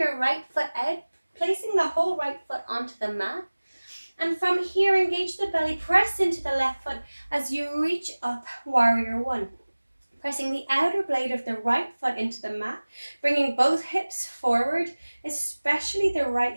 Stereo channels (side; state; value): both; inverted; correlation -1.00